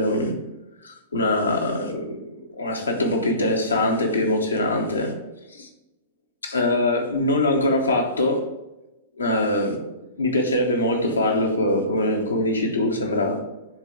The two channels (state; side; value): inverted; both; correlation -0.40